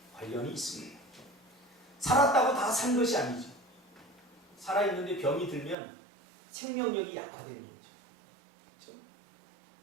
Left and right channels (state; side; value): drops out; left; at 5.8 s